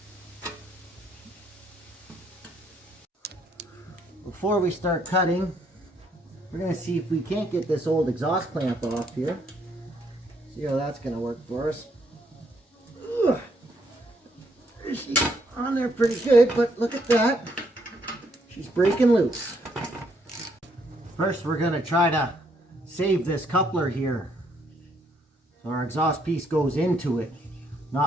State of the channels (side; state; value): both; normal; correlation 0.71